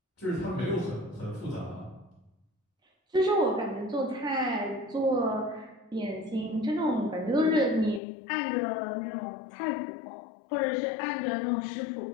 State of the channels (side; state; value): right; drops out; at 8.0 s